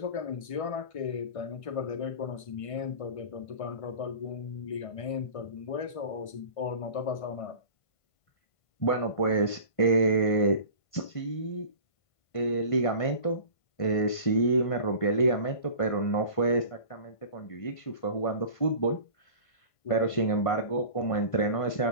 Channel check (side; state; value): right; late; 1.5 ms